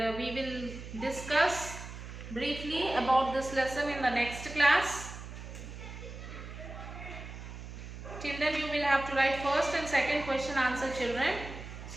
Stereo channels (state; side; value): noise; right; hum, 11 dB below the sound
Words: we will discuss briefly about this lesson in the next class. Till then you will have to write first and second question answer, children.